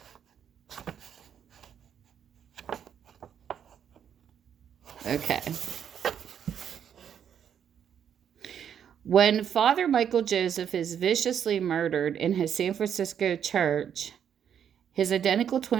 Okay. When Father Michael Joseph is viciously murdered in his San Francisco church, his identical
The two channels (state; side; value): quieter; left; 8.6 dB